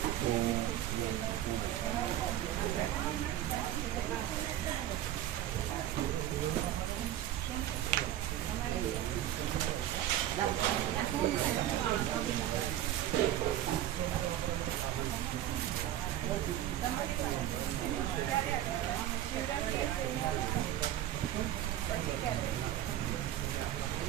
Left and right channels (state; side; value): quieter; left; 12.5 dB